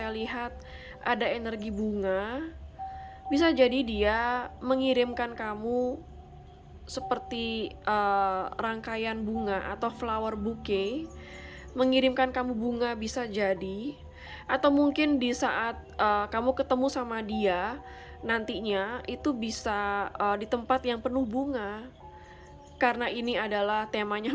lihat ada energi bunga. Bisa jadi dia mengirimkan kamu seperti rangkaian bunga atau flower bouquet. Mengirimkan kamu bunga bisa jadi. Atau mungkin di saat kamu ketemu sama dia nantinya itu bisa di tempat yang penuh bunga. Karena ini adalah temanya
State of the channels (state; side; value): identical; both; correlation 1.00